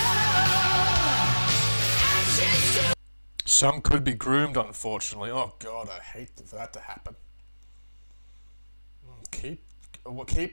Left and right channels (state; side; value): inverted; both; correlation -1.00